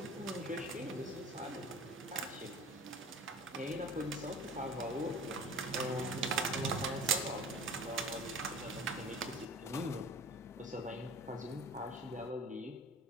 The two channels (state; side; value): normal; both; correlation 0.41